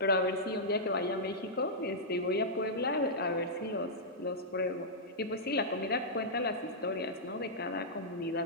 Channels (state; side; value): normal; both; correlation -0.11